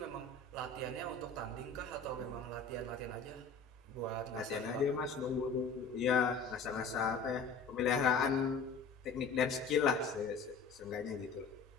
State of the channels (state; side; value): quieter; right; 4.6 dB